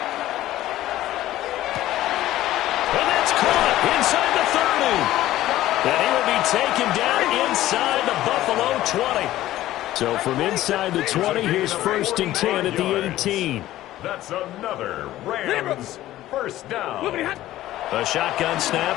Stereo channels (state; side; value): quieter; right; 14.7 dB